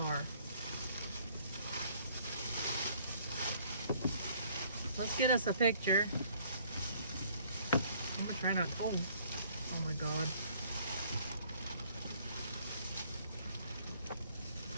Let's get us a picture. I'm gonna try not. Oh my god.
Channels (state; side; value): inverted; both; correlation -0.60